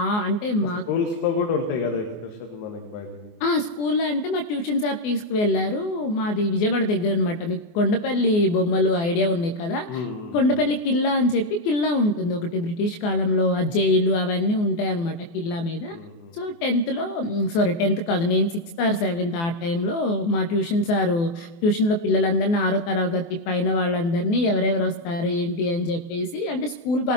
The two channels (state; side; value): late; right; 24 ms